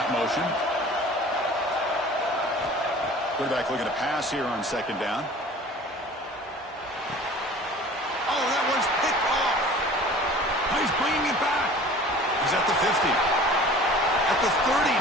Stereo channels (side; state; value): both; normal; correlation 0.45